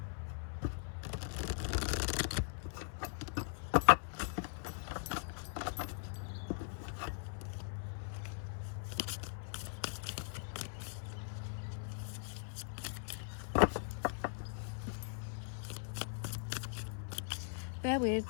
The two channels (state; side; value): silent; right; 51 dB below the other